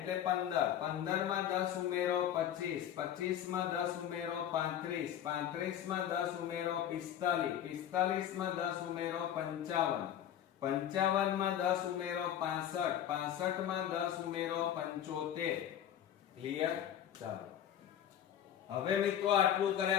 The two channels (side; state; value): right; quieter; 10.4 dB